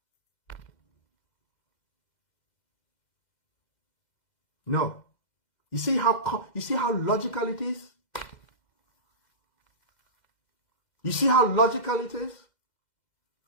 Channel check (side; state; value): right; late; 2.1 ms